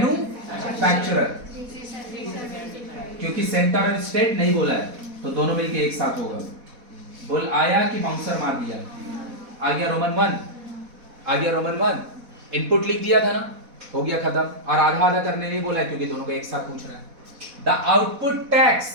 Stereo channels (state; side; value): late; left; 4.1 ms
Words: क्योंकि सेंटर और स्टेट नहीं बोला है तो दोनों मिलके एक साथ होगा। बोल आया कि बाउंसर मार दिया? आ गया रोमन 1, आ गया रोमन 1। इनपुट लिख दिया था ना, हो गया खत्म। और आधा आधा करने नहीं बोला है क्योंकि दोनों को एक साथ पूछ रहा है। The output tax